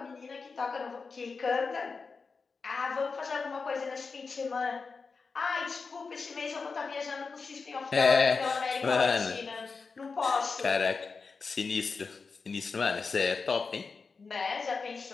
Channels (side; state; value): right; quieter; 4.7 dB